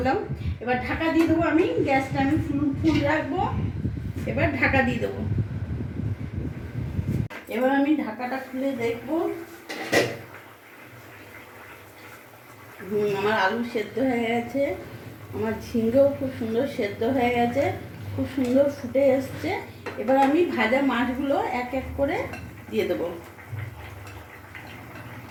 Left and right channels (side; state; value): both; identical; correlation 1.00